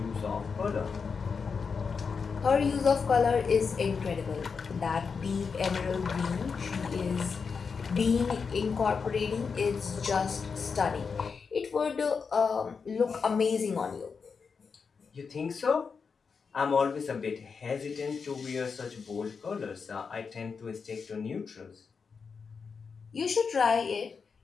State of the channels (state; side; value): quieter; right; 5.5 dB